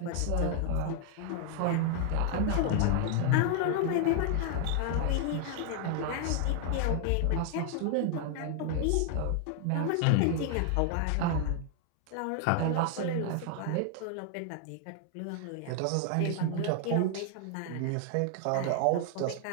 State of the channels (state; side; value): different; both; correlation 0.00